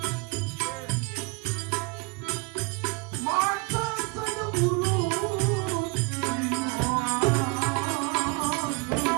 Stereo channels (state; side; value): quieter; left; 28.5 dB